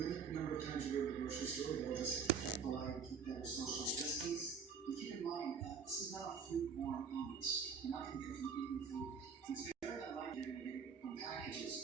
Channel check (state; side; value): quieter; left; 5.9 dB